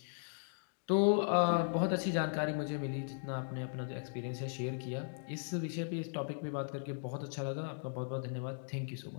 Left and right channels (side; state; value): right; silent; digital silence